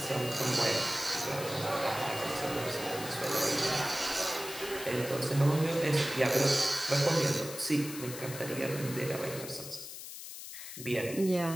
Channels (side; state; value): left; noise; hiss, 11 dB below the sound